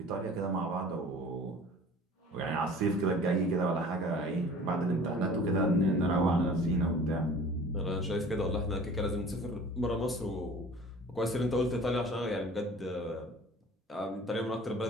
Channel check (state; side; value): normal; both; correlation 0.45